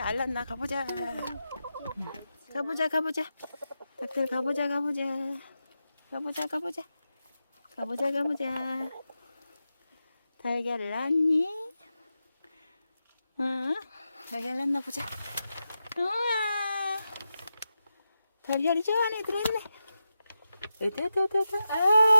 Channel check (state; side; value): inverted; both; correlation -0.89